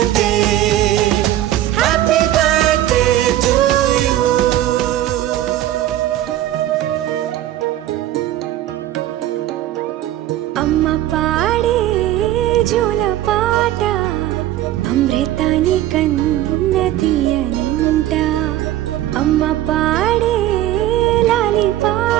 happy birthday to you అమ్మ పాడే జోల పాట అమృతాని కన్న తీయనంట అమ్మ పాడే లాలి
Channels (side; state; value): left; quieter; 13.5 dB